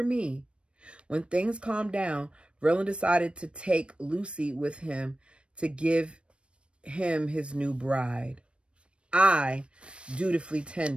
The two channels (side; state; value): left; late; 0.059 ms